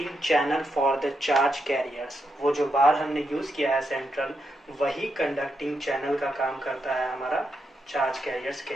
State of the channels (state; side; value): normal; both; correlation 0.83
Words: channel for the charge carriers. वो जो बार हमने यूज किया है सेंट्रल, वही कंडक्टिंग चैनल का काम करता है हमारा चार्ज कैरियर्स के